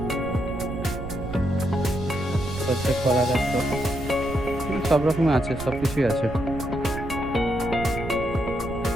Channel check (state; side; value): noise; right; rumble, 9 dB below the sound